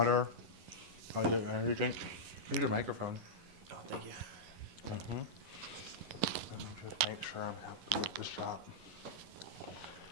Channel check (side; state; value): left; late; 11 ms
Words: I'll get an energy drink. Here's your microphone. Oh, thank you. Mm-hmm. Let me just make sure I'm happy with the shot.